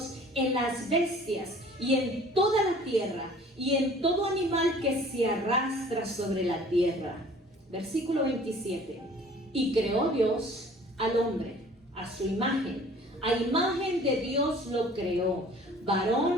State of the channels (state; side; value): normal; both; correlation 0.50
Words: en las bestias, y en toda la tierra, y en todo animal que se arrastra sobre la tierra. Versículo 27. Y creó Dios al hombre a su imagen. A imagen de Dios lo creó,